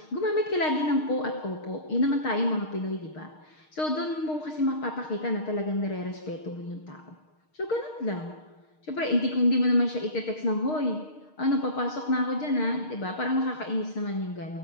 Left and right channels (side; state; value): right; late; 6.5 ms